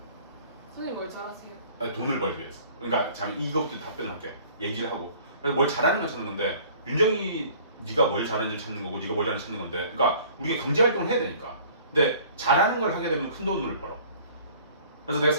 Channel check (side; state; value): both; inverted; correlation -0.51